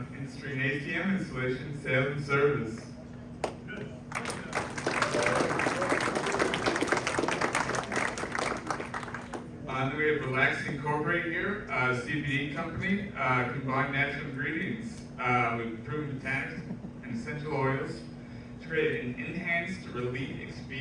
industry in ATM installation, sales, and service. Then we have Relax Incorporated here, a CBD company, combined natural ingredients with proven botanics and essential oils to create an enhanced relief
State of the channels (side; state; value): both; identical; correlation 1.00